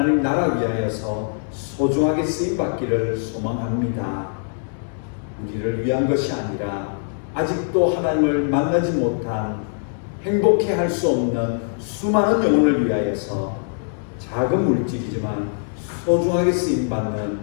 나라 위하여서 소중하게 쓰임받기를 소망합니다. 우리를 위한 것이 아니라 아직도 하나님을 만나지 못한 행복해 할 수 없는 수많은 영혼을 위하여서 작은 물질이지만 소중하게 쓰임받는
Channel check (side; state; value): right; silent; digital silence